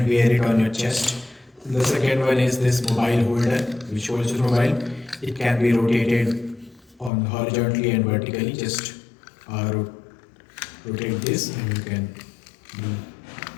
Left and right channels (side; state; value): right; drops out; at 7.1 s